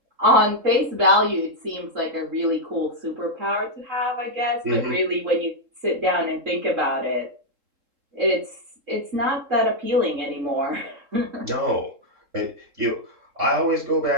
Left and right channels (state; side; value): late; left; 3.7 ms